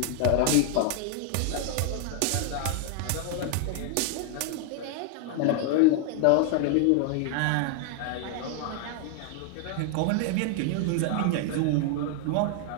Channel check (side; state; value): both; different; correlation 0.00